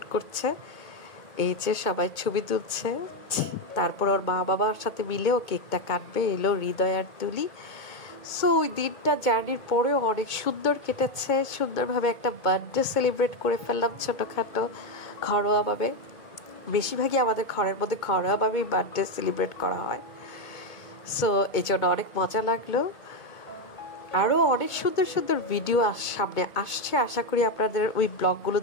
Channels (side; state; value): right; late; 2.2 ms